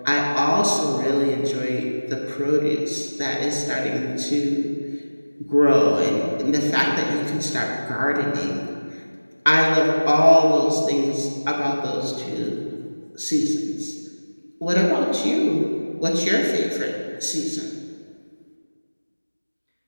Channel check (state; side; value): inverted; both; correlation -1.00